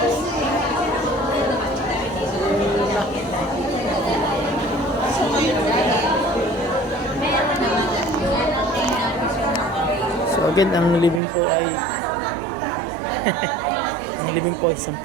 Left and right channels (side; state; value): left; drops out; at 11.2 s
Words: So again, ang living po ay ang living po ay